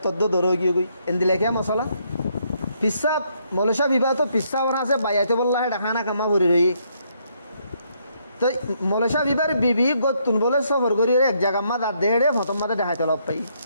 তদ্দ দরো গিয়ে কই এন্দিলে কে মশলা পিসা মলেশা বিবাহ তো পিসা ওরা আছে বাইয়াতে বললা হেডা খানা কামা ভরি রই তো মলেশা বিবার বিবি গতুন বলে সফর করি এক জায়গা মা দাঁত দেড়ে হতম মাদে দেখাইতে লব পাই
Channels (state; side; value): inverted; both; correlation -0.73